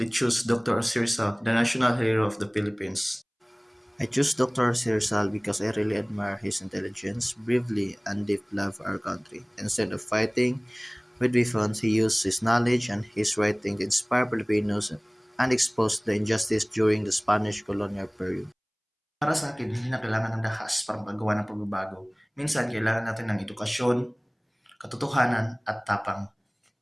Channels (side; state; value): both; identical; correlation 1.00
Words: choose Dr. Sirsa, the national hero of the Philippines. I choose Dr. Sirsal because I really admire his intelligence, bravery, and deep love for our country. Instead of fighting with weapons, he used his knowledge and his writing to inspire Filipinos and expose the injustice during the Spanish colonial period. Para sa akin, hindi na kailangan ng dahas para magawa ng pagbabago. Minsan, kailangan natin ng edukasyon, katotohanan, at tapang.